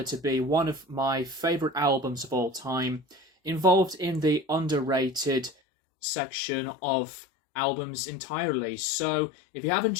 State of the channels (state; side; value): drops out; right; at 5.6 s